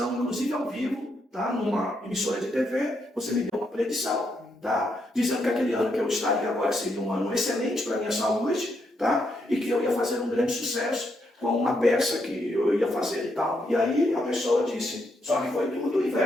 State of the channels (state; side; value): normal; both; correlation 0.78